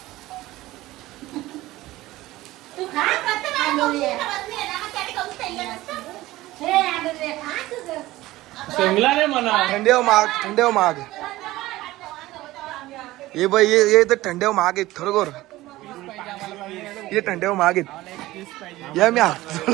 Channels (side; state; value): left; quieter; 17.4 dB